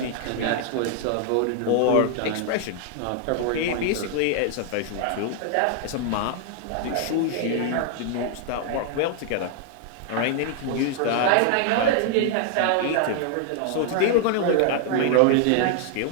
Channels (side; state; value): both; different; correlation 0.00